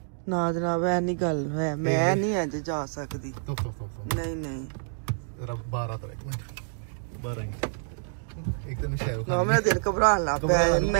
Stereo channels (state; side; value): silent; left; digital silence